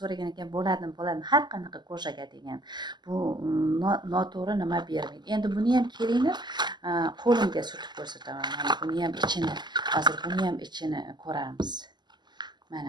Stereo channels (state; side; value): late; left; 0.21 ms